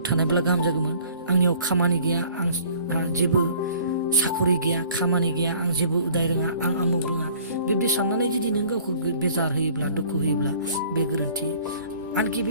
थानायब्ला गाहाम जागौमोन, आंनियाव खामानि गैया, आंहा जेबो साखरि गैया, खामानि गैया, आं जेबो उदाय रोङा, आं आमुक रोङा, बेबायदि साननानै जुदि नों गावखौ बेजार होयोब्ला दुखु होयोब्ला बे गोरोन्थि। आनखि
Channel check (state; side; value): inverted; both; correlation -0.52